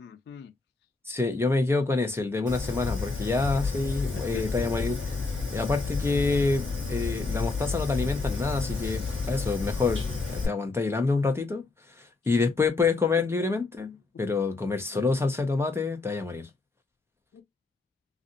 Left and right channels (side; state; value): right; quieter; 3.5 dB